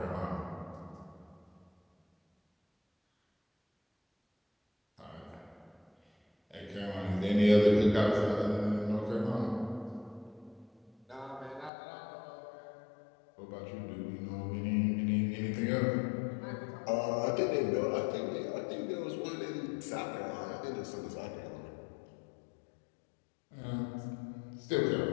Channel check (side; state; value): right; drops out; at 11.7 s